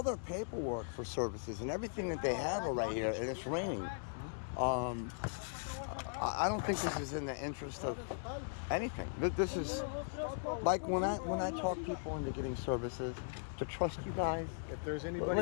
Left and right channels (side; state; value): right; silent; 52 dB below the other